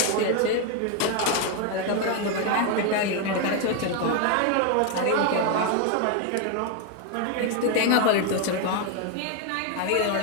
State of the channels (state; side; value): different; both; correlation 0.01